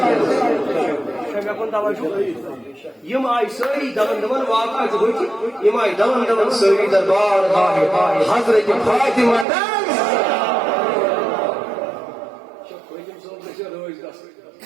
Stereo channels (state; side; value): drops out; left; at 9.5 s